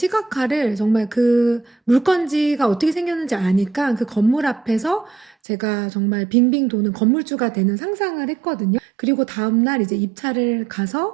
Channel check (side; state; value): left; drops out; at 5.4 s